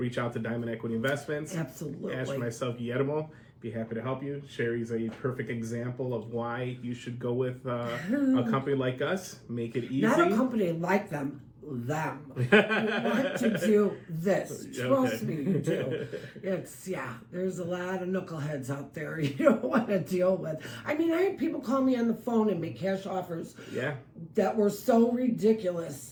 out to Diamond Equity Investments. Absolutely. Ask for myself, Guillermo. Be happy to help you. Sherry's a perfect example of why you should go with a company like us. Make it easy. Not a company like them. You want to do this. Trust me, you do. There's a lot of knuckleheads out there you don't want to deal with. I had people call me on the phone and make cash offers that were so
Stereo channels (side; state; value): both; identical; correlation 1.00